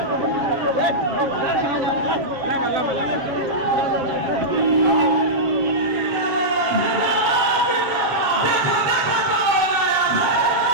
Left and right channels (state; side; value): late; left; 7.4 ms